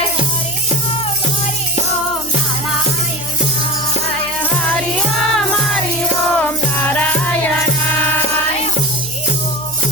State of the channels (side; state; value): left; noise; hum, 19 dB below the sound